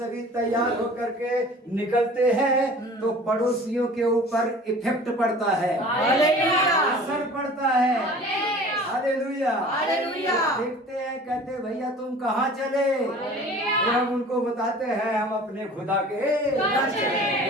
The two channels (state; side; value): normal; both; correlation 0.44